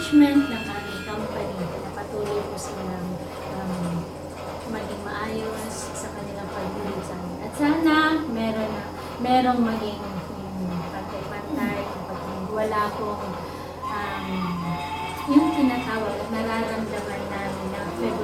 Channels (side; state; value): both; identical; correlation 1.00